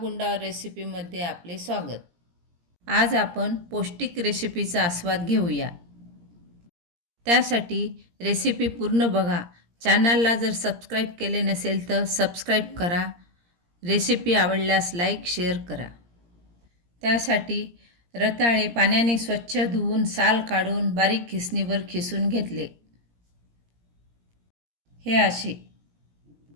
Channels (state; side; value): late; left; 17 ms